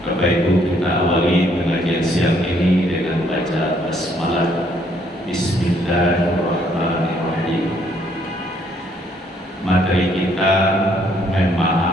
Bapak Ibu, kita awali pengajian siang ini dengan baca basmalah. Bismillahirrahmanirrahim. Materi kita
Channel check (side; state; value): both; normal; correlation 0.67